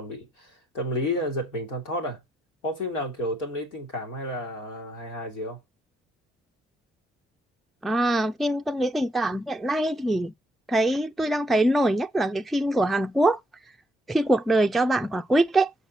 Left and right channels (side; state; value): both; normal; correlation 0.78